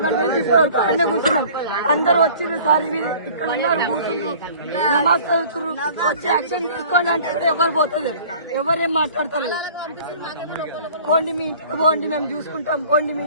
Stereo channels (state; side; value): inverted; both; correlation -0.48